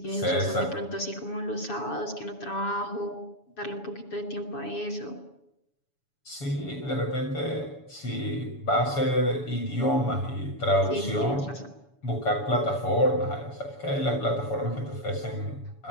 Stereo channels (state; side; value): late; right; 7.1 ms